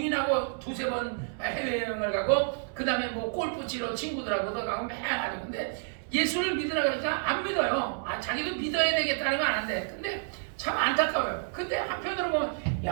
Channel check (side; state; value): left; silent; digital silence